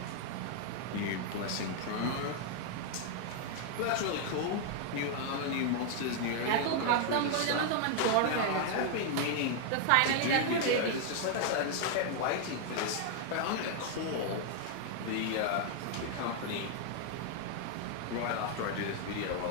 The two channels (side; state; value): both; different; correlation 0.00